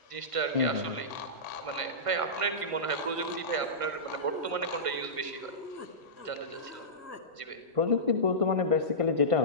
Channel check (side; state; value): left; late; 1.6 ms